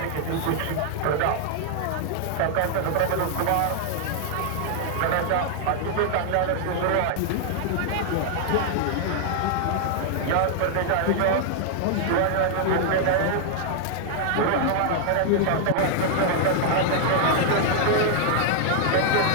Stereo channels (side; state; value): both; different; correlation 0.00